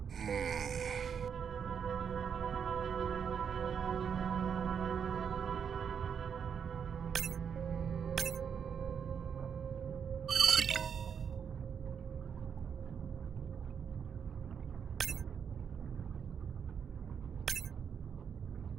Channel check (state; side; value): quieter; left; 7.2 dB